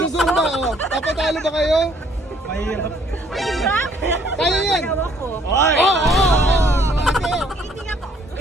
Papatalo ba kayo? Mahirap? Kaya yan. Ako. Oy! Skating ako.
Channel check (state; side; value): normal; both; correlation 0.63